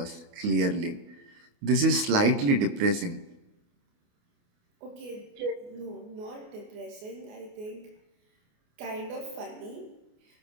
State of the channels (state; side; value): late; left; 28 ms